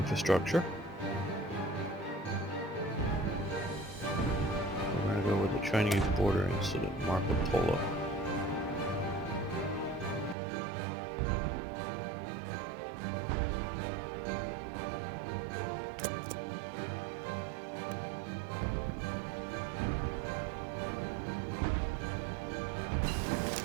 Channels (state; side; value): drops out; left; at 10.4 s